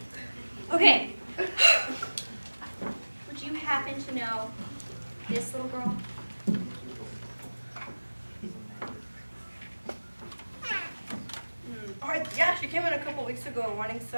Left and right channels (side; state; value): both; inverted; correlation -1.00